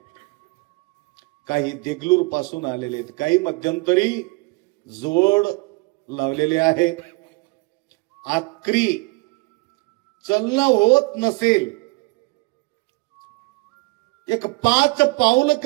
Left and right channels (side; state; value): left; quieter; 26.2 dB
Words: काही देगलूर पासून आलेले आहेत, काही मध्यंतरी जोड लावलेले आहे। आखरी चलणं होत नसेल, एक 5 पाऊल